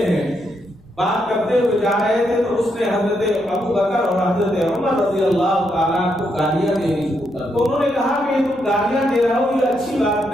ہیں، بات کرتے ہوئے جا رہے تھے تو اس نے حضرت ابو بکر اور حضرت عمر رضی اللہ تعالیٰ کو گالیاں دینی شروع کر، تو انہوں نے کہا کہ یہ تم گالیاں دے رہے ہو، یہ اچھی بات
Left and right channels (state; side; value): noise; left; rumble, 29 dB below the sound